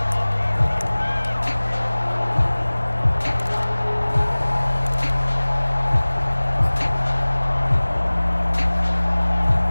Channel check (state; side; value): inverted; both; correlation -1.00